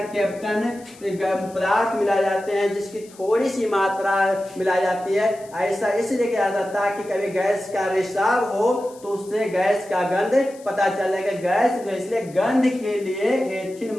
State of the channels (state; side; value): noise; left; hiss, 24 dB below the sound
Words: पदार्थ मिलाए जाते हैं, जिसकी थोड़ी सी मात्रा मिलाई जाती है। ऐसा इसलिए किया जाता है कि कभी गैस का रिसाव हो तो उससे गैस का गंध पता चलेगा। गैस इसलिए गंध के लिए एथिल